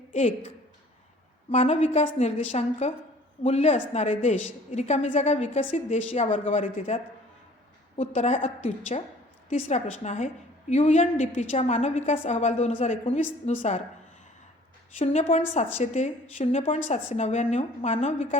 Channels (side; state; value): both; normal; correlation 0.52